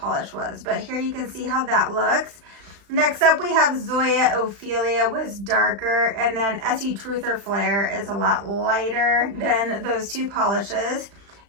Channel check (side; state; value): left; late; 35 ms